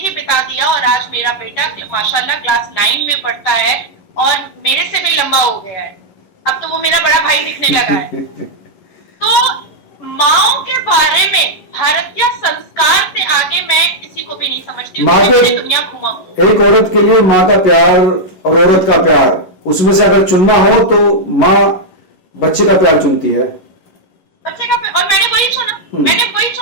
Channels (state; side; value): late; right; 11 ms